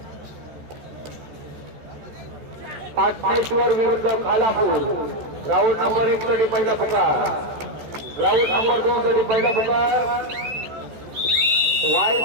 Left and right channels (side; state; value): left; late; 14 ms